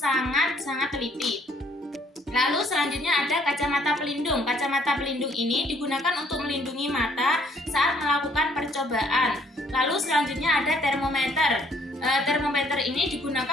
teliti. Lalu selanjutnya ada kacamata pelindung. Kacamata pelindung ini digunakan untuk melindungi mata saat melakukan percobaan. Lalu selanjutnya ada termometer. Termometer ini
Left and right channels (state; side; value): normal; both; correlation 0.63